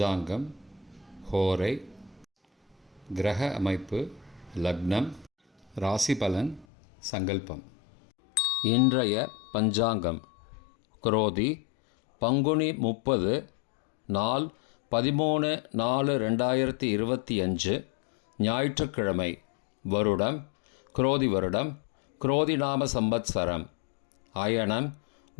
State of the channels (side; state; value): right; drops out; at 6.7 s